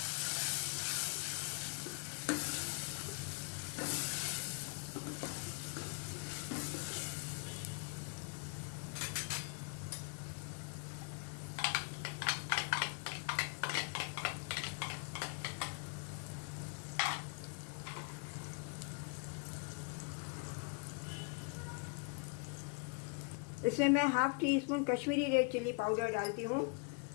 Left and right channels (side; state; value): right; quieter; 35.7 dB